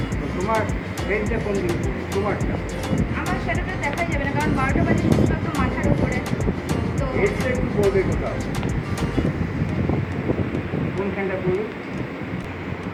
তো তোমার ট্রেনটা কোন দিন তোমারটা আমার সেটা তো দেখা যাবে না কারণ 12টা বাজে শুধুমাত্র মাথার উপরে তো এসটা একটু পড়বে কোথাও কোনখানটা পড়বে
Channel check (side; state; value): both; identical; correlation 1.00